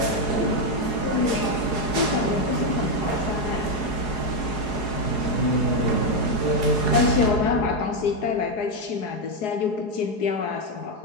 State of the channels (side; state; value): right; late; 4.8 ms